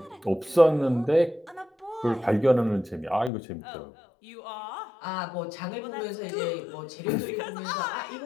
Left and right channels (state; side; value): drops out; right; at 3.3 s